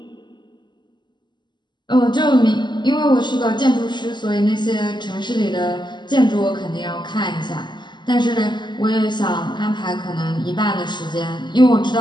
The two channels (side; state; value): right; late; 0.21 ms